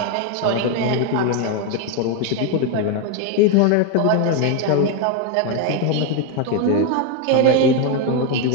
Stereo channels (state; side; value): different; both; correlation 0.01